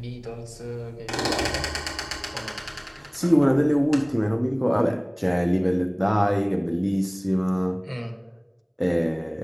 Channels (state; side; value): identical; both; correlation 1.00